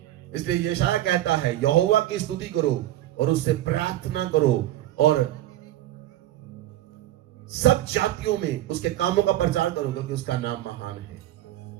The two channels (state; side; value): quieter; left; 13.9 dB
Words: इसलिए यशाया कहता है, यहोवा की स्तुति करो और उससे प्रार्थना करो और सब जातियों में उसके कामों का प्रचार करो, क्योंकि उसका नाम महान है।